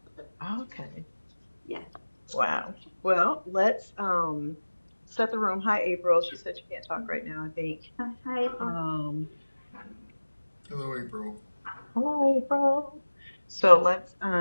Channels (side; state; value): both; inverted; correlation -1.00